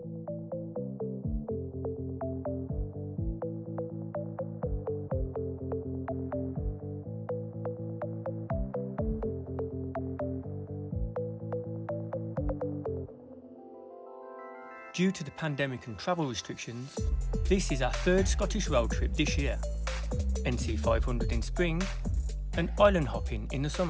to the pandemic and travel restrictions, this is our third Scottish road trip this year. NC 500 in spring and island hopping in the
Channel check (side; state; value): both; identical; correlation 1.00